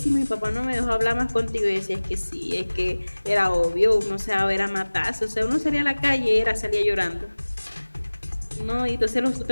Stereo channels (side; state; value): both; inverted; correlation -1.00